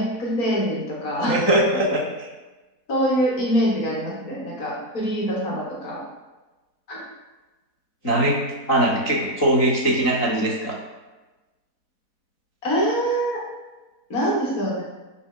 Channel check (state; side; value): late; right; 4.1 ms